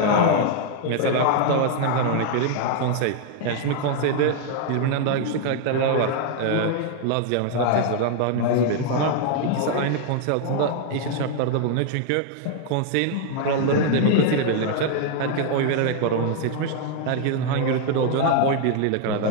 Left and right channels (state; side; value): different; both; correlation 0.00